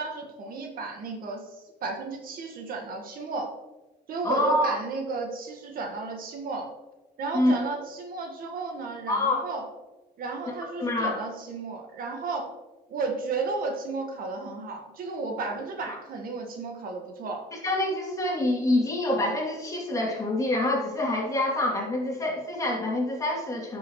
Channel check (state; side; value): normal; both; correlation 0.43